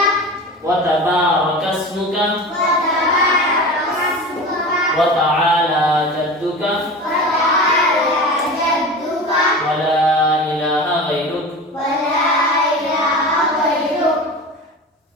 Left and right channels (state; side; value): normal; both; correlation 0.32